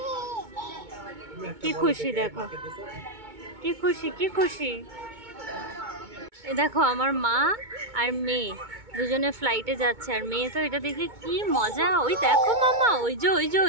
কি খুশি, দেখো কি খুশি, কি খুশি। এই দেখো আমার মা আর মেয়ে দুজনে ফ্লাইটে যাচ্ছে, আর মেয়ে তো এটা দেখে কি মজা। ওই দেখো মামা, ওই যে ওই যে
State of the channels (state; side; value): late; left; 2.2 ms